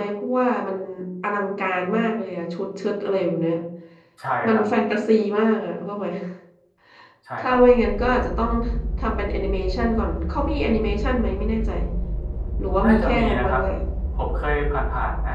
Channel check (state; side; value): identical; both; correlation 1.00